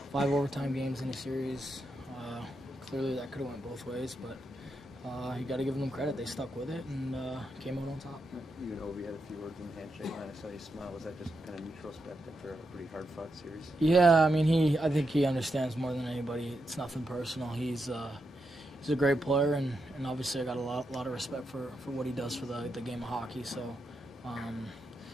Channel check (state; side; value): normal; both; correlation 0.84